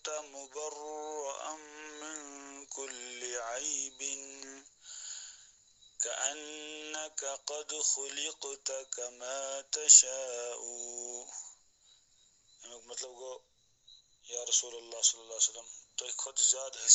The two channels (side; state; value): both; identical; correlation 1.00